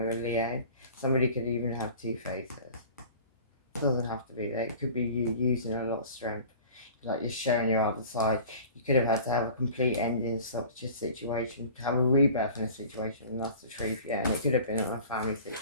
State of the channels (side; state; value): both; inverted; correlation -0.43